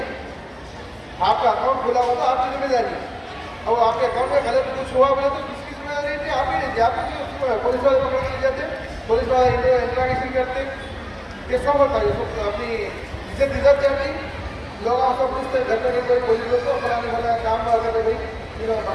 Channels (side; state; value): both; identical; correlation 1.00